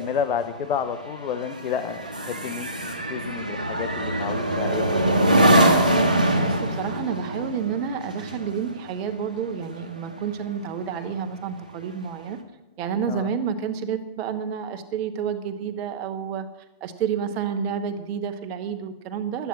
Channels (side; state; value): both; inverted; correlation -0.43